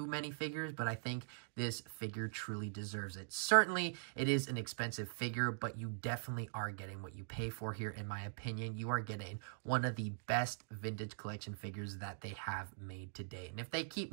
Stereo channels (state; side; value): silent; left; digital silence